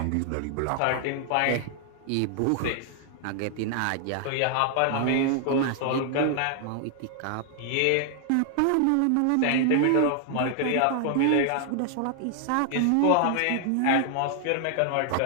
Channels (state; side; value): different; both; correlation 0.00